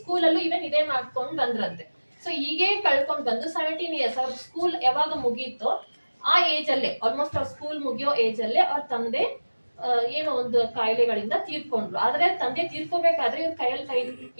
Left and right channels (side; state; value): both; inverted; correlation -1.00